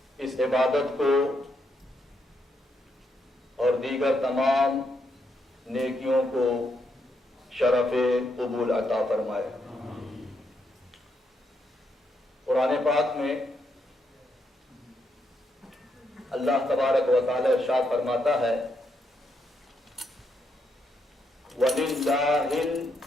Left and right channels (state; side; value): normal; both; correlation 0.78